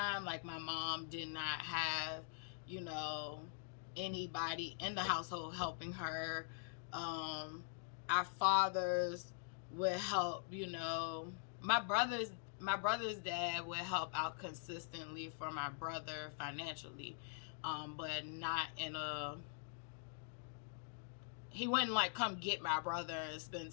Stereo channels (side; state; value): right; silent; digital silence